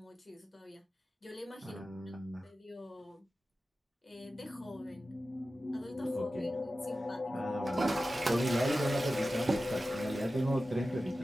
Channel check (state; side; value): normal; both; correlation 0.94